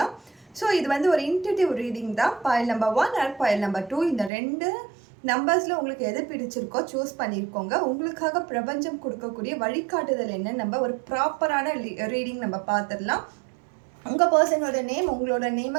ஸோ இது வந்து ஒரு இன்ட்யூட்டிவ் ரீடிங் தான். Boil number 1 and boil number 2 இந்த ரெண்டு நம்பர்ஸில் உங்களுக்கு எது பிடிச்சிருக்கோ சூஸ் பண்ணியிருக்கோங்க. உங்களுக்காக பிரபஞ்சம் கொடுக்கக்கூடிய வழிகாட்டுதல் என்ன, நம்ம ஒரு ப்ராப்பரான ரீடிங் நம்ம பார்த்துடலாம். உங்கள் பர்சனோட நேம், உங்களோட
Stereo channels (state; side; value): drops out; left; at 4.3 s